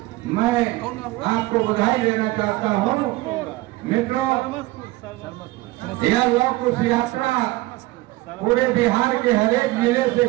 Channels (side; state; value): left; quieter; 19.5 dB